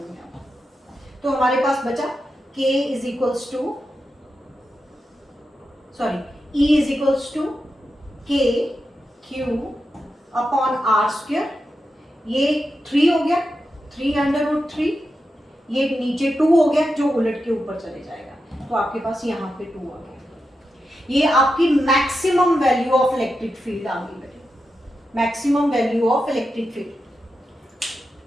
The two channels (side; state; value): both; normal; correlation 0.88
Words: हूं। तो हमारे पास बचा k is equals to, sorry e is equals to k q upon r square, ये 3 हो गया, 3 अंडर रूट 3, ये नीचे 2 हो गया जो उलट के ऊपर चले जाएगा, तो आपके पास यहाँ पे 2 आ गया। ये आपकी maximum value of electric field आ गई बेटे, maximum value of electric field.